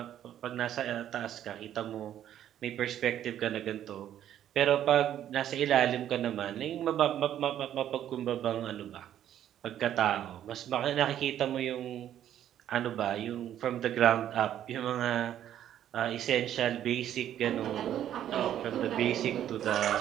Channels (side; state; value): left; quieter; 11.0 dB